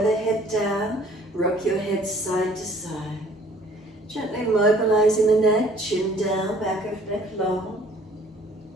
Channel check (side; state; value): both; normal; correlation 0.56